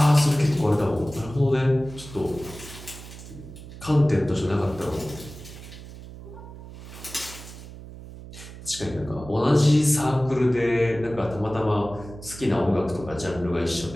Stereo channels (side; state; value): right; noise; hum, 15 dB below the sound